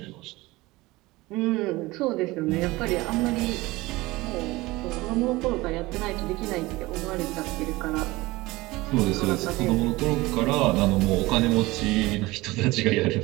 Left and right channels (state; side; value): quieter; left; 20.6 dB